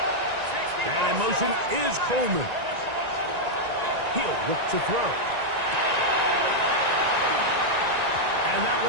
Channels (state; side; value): late; left; 1.9 ms